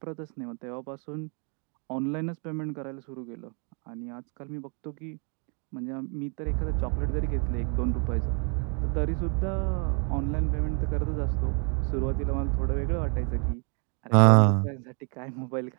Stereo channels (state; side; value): quieter; left; 38.5 dB